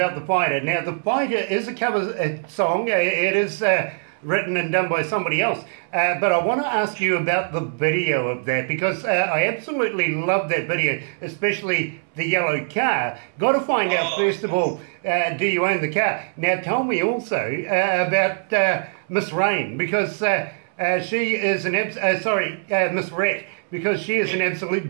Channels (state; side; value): silent; left; 64 dB below the other